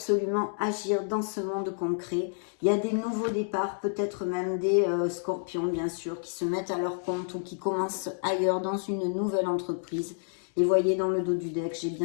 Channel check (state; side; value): silent; right; digital silence